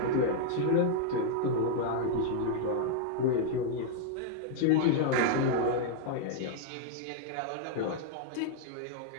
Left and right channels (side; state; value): both; different; correlation -0.01